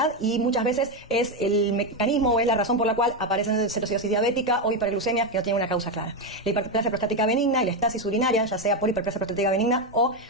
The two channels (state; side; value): normal; both; correlation 0.09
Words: y muchas veces es el mecanismo o es la razón por la cual aparecen cetocidosis diabética o hiperglucemias que no tienen una causa clara. La hiperplasia prostática benigna y la estasis urinaria, ya sea por hiperplasia prostática benigna o